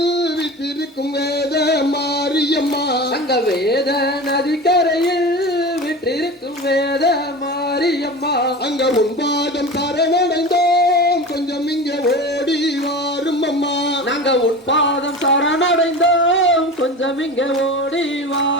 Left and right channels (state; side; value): normal; both; correlation 0.32